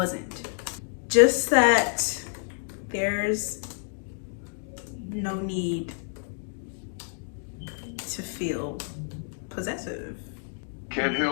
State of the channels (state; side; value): silent; right; digital silence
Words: Just that there's no need to feel possessive. Can't